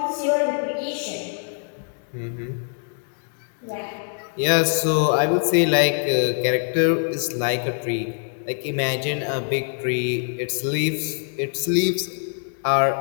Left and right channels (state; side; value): silent; right; 63 dB below the other